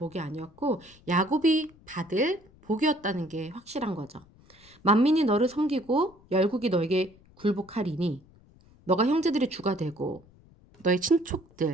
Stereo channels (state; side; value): noise; left; rumble, 27 dB below the sound